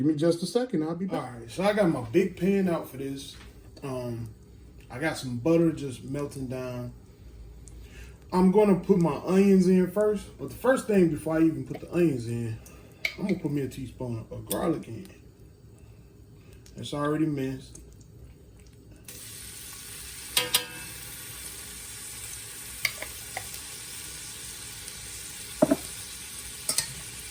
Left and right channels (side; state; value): both; identical; correlation 1.00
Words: me just a second. I'll be back. All right, so I got my big pan out for this. I got some butter just melting down. I'm going to put my onions in first. But the first thing, before I even put the onions in, I'm going to put me a teaspoon of garlic in. It's already minced.